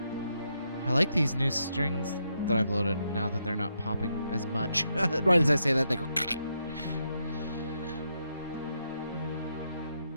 I like these new strings that I've loaded now that they're not popping as much. Right as I say that, they go.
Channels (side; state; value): both; inverted; correlation -0.80